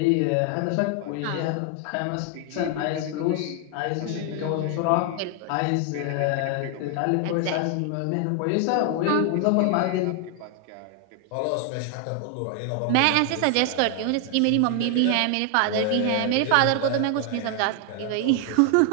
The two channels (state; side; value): different; both; correlation 0.00